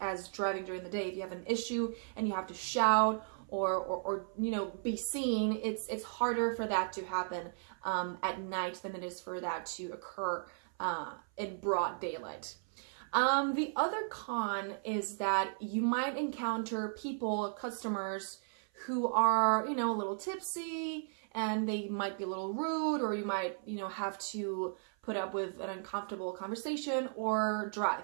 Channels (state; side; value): silent; left; 54 dB below the other